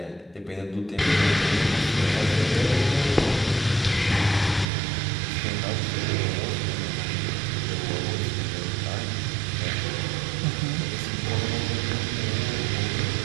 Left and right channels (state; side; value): drops out; left; at 4.7 s